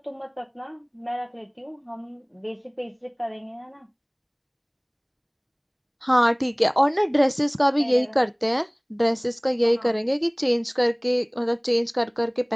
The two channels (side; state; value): both; identical; correlation 1.00